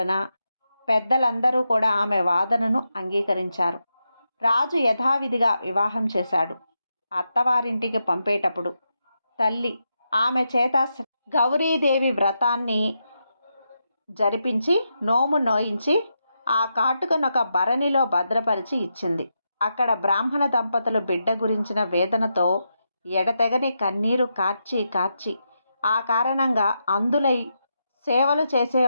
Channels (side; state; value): both; inverted; correlation -0.85